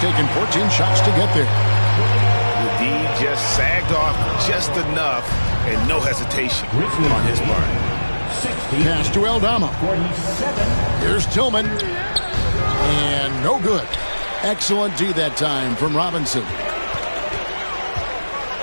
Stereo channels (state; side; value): inverted; both; correlation -1.00